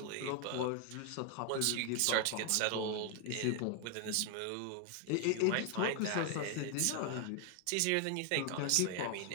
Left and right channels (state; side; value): different; both; correlation 0.01